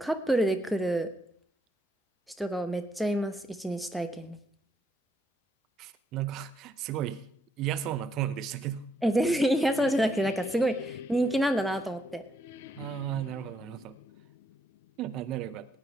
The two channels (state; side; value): normal; both; correlation 0.75